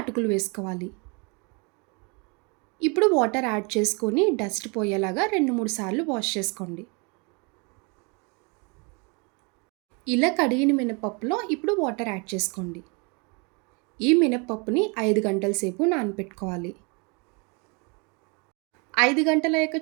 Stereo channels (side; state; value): left; quieter; 31.9 dB